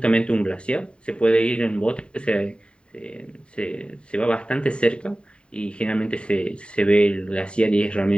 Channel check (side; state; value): right; late; 0.053 ms